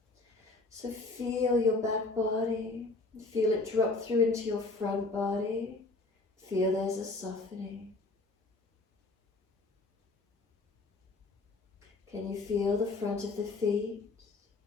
So feel your back body. Feel it drop through into your front body. Feel there's a softening. Can you feel the front of the feet?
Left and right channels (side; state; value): right; quieter; 3.4 dB